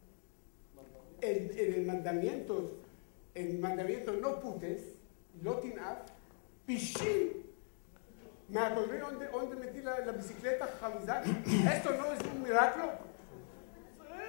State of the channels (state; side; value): silent; right; 51 dB below the other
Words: en el mandamiento no putes, no tinaf, pichín, me acordé donde metí la bicicleta, Jamizak. ¿Esto no es un milagro?